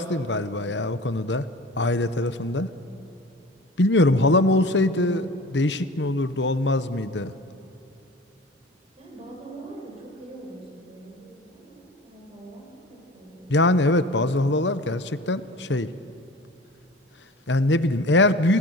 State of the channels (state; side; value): normal; both; correlation 0.39